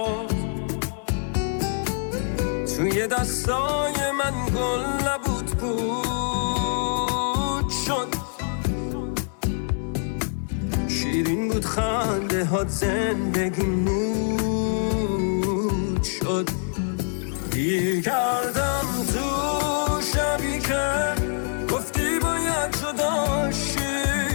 توی دستای من گل نبود پود شد، شیرین بود خنده هات زندگی نود شد. گیر کردم تو شبی که گفتی باید جدا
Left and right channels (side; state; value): right; silent; digital silence